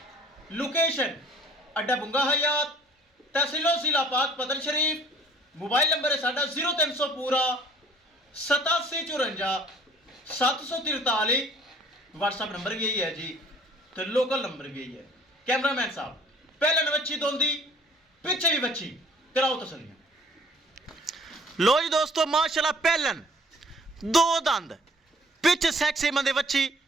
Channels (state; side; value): normal; both; correlation 0.55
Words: ਲੋਕੇਸ਼ਨ ਅੱਡਾ ਬੁੰਗਾ ਹਯਾਤ, ਤਹਿਸੀਲ ਜ਼ਿਲ੍ਹਾ ਪਾਕ ਪਤਨ ਸ਼ਰੀਫ। मोबाइल नंबर है साडा 0300 पूरा 8754 743। व्हाट्सअप नंबर भी यही है जी, तो लोकल नंबर भी यही है। कैमरामैन साहब पहले बच्ची दोंदी पीछे भी बच्ची कराओ तसलियां। लो जी दोस्तों माशाल्लाह पहलन दो दंद पिछ सैक्सी मंदे बच्ची